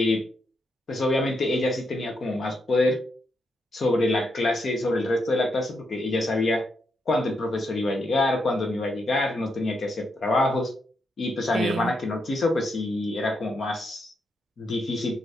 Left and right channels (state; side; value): normal; both; correlation 0.81